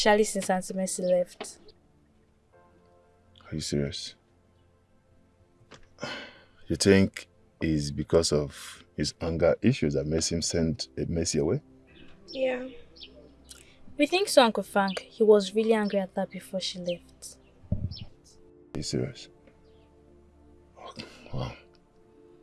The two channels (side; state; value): both; identical; correlation 1.00